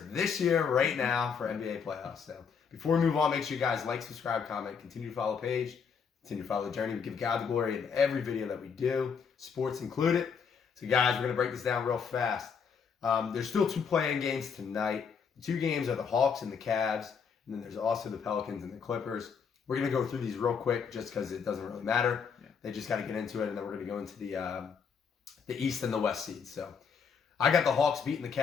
this year right now for NBA playoffs. So before we move on, make sure you guys like, subscribe, comment, continue to follow the page, continue to follow the journey. We give God the glory in every video that we do, sports included. So guys, we're going to break this down real fast. There's still 2 play-in games tonight. The 2 games are the Hawks and the Cavs, and then there's also the Pelicans and the Clippers. We're going to go through these real quick just because it doesn't really matter. Yeah. They just got to get into it, and then we're going to go into the East and the West seeds. So I got the Hawks beating the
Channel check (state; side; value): quieter; right; 6.3 dB